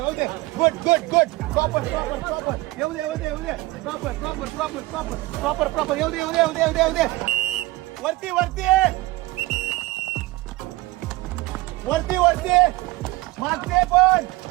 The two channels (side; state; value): left; quieter; 20.3 dB